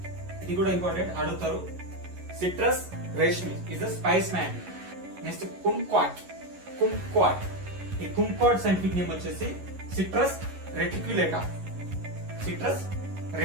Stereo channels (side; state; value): left; late; 11 ms